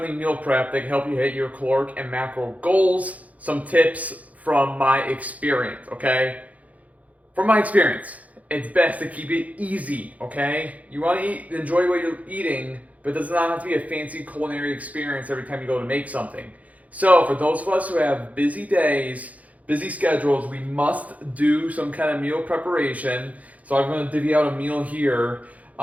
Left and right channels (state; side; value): late; left; 0.071 ms